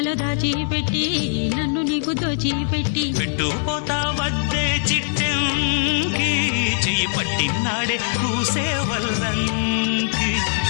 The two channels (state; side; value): silent; right; 65 dB below the other